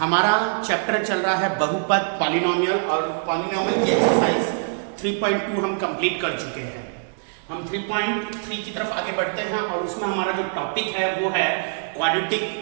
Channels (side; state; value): left; silent; digital silence